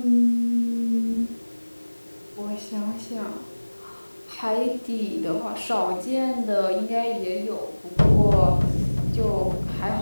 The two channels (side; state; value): both; inverted; correlation -1.00